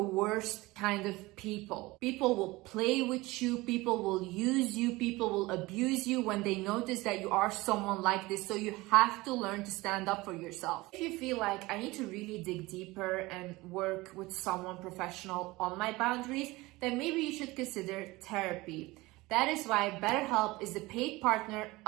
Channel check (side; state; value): left; quieter; 21.0 dB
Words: worst kind of people. People will play with you, people will use you, people will abuse you when they notice that you are someone like this. So you have to learn to stand up for yourself. If you feel like I need to really dig deeper and work with someone professional on my boundaries, then maybe you should consider therapy. That is why BetterHelp is the paid partner